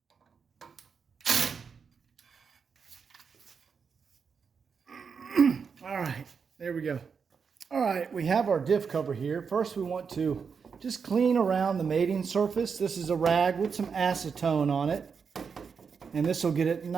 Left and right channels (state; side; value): quieter; left; 5.9 dB